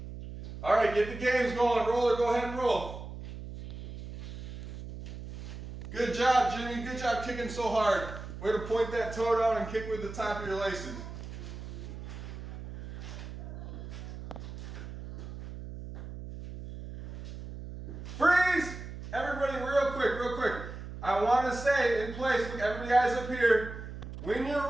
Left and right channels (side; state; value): right; noise; hum, 11 dB below the sound